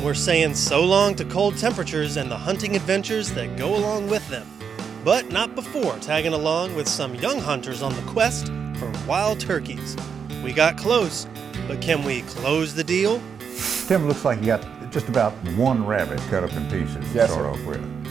we're saying so long to cold temperatures and the hunting adventures that go along with them. But not before tagging along with some young hunters on the quest for wild turkeys. We got close, but can we close the deal? Tim, looks like you got just about one rabbit cut up in pieces to start off with.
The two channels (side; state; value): left; quieter; 6.7 dB